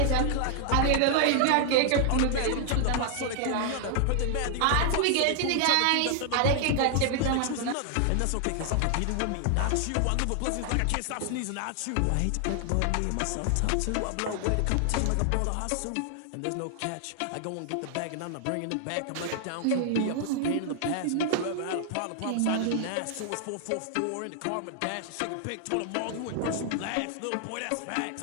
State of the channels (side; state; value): both; different; correlation 0.00